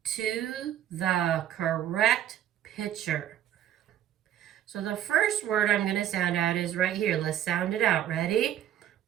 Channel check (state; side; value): quieter; left; 11.0 dB